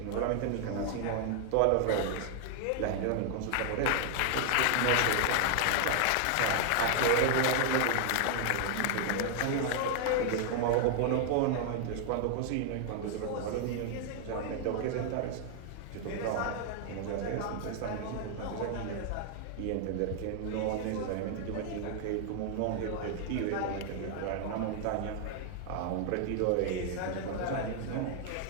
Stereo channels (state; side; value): different; both; correlation 0.00